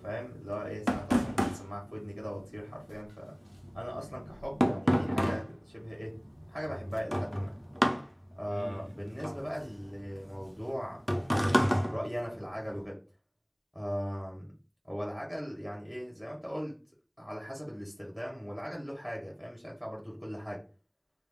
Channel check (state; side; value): identical; both; correlation 1.00